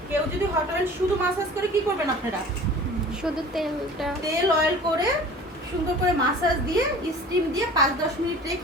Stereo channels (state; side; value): normal; both; correlation 0.43